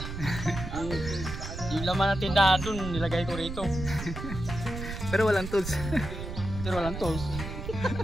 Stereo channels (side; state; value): right; noise; rumble, 7 dB below the sound